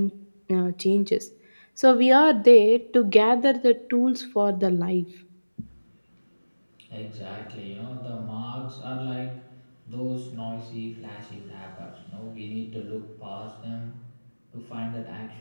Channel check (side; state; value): both; inverted; correlation -1.00